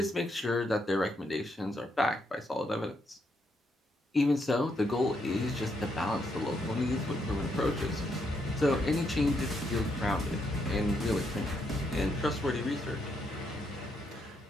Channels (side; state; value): both; normal; correlation 0.77